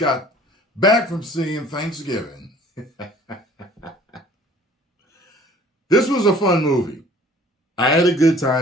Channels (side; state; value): both; normal; correlation 0.52